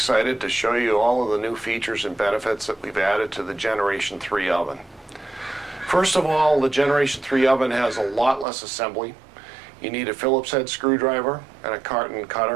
to show you all of the new features and benefits that we've added to the Generation 3 oven. First of all, the Generation 3 oven has a lot less assembly. You need a Phillips head screwdriver and a carton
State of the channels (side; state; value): left; drops out; at 8.5 s